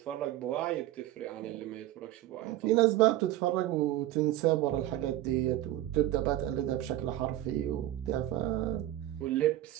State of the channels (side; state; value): left; quieter; 14.3 dB